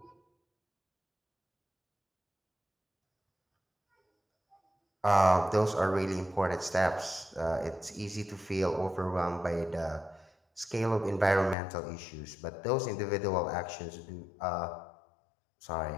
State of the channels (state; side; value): drops out; right; at 11.6 s